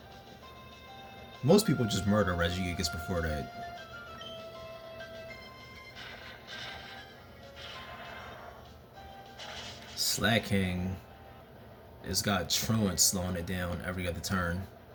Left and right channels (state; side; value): identical; both; correlation 1.00